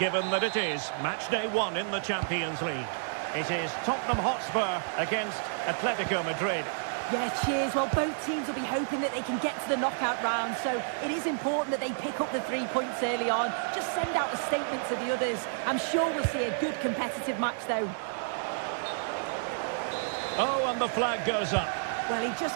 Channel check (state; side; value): silent; left; digital silence